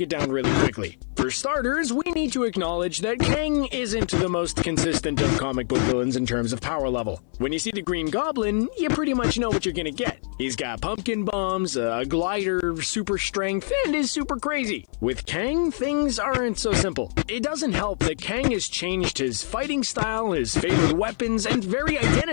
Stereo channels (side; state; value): right; silent; digital silence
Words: it down really quickly. For starters, we need to acknowledge that Kang isn't the most consistent of comic book villains in terms of power level. When you see the Green Goblin, you pretty much know what you're gonna get. He's got pumpkin bombs, a glider, super strength, and is super crazy. With Kang, things aren't so simple. It doesn't help that Kang has changed his fighting style, his favorite weapons, and very